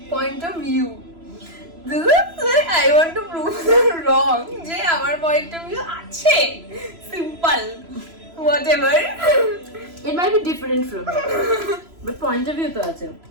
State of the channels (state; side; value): late; left; 3.0 ms